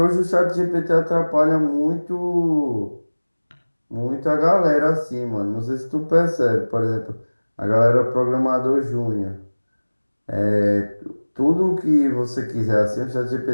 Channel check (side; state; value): both; inverted; correlation -1.00